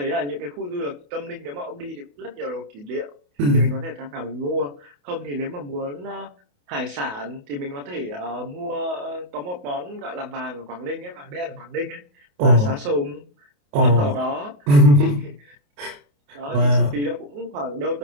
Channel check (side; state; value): left; late; 28 ms